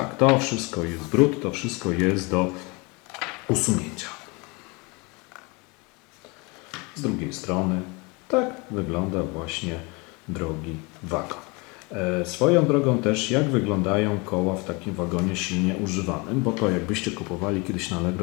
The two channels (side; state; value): right; quieter; 28.0 dB